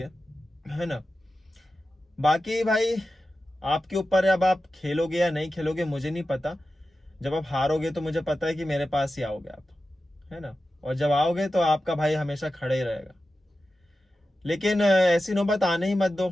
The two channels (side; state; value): both; normal; correlation 0.93